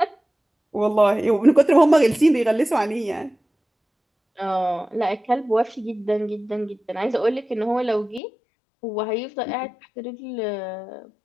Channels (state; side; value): drops out; right; at 8.2 s